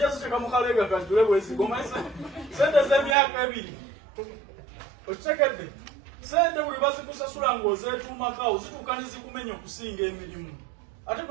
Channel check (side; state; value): left; drops out; at 3.2 s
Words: ziteeka mu kaleega kanjule bwezigomanyi ssente z'emyaka 2. Okitegedde? Ssente buli bazikusasula ng'ozeetuumako zituuka ne zikumenya okusinga emirimu. Ate